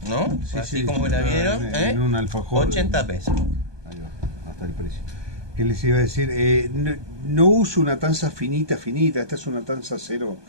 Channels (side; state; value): left; late; 1.2 ms